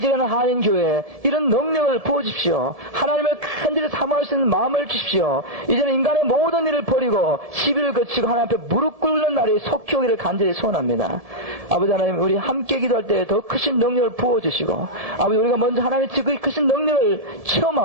한인교회에 이런 능력을 부어주십시오. 하나님을 간절히 사모할 수 있는 마음을 주십시오. 이제는 인간의 모든 일을 버리고 시비를 거치고 하나님 앞에 무릎 꿇는 날이 속히 오기를 간절히 소원합니다. 아버지 하나님, 우리 함께 기도할 때 더 크신 능력을 부어주시고 아버지, 우리가 먼저 하나님의 그 크신 능력을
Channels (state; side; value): late; left; 1.7 ms